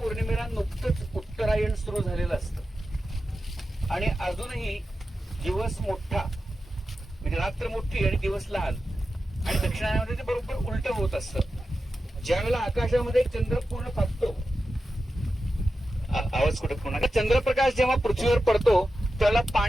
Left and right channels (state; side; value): normal; both; correlation 0.91